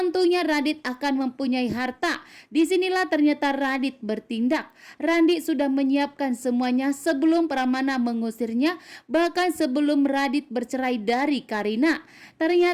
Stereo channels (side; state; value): both; identical; correlation 1.00